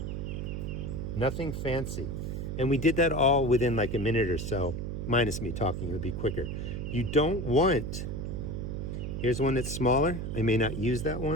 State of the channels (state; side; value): noise; right; hum, 4 dB below the sound